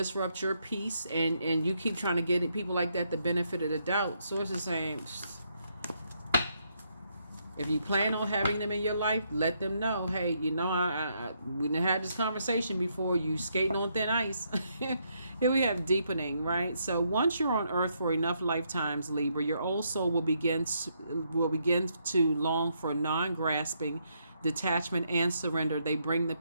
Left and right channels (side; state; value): both; inverted; correlation -0.76